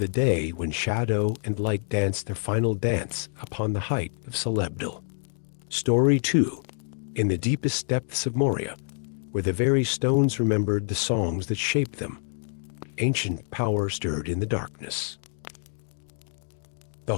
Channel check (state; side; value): silent; right; digital silence